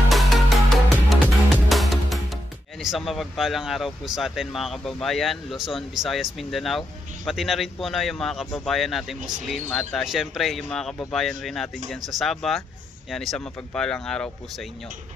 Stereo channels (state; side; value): normal; both; correlation 0.82